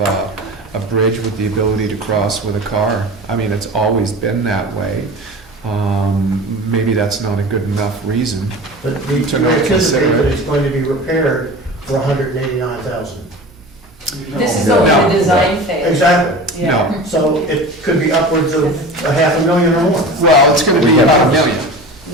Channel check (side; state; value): both; normal; correlation 0.34